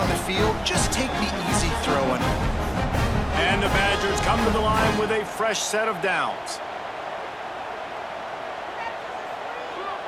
the field. Just take the easy throw on him. And the Badgers come to the line with a fresh set of downs.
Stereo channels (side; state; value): both; identical; correlation 1.00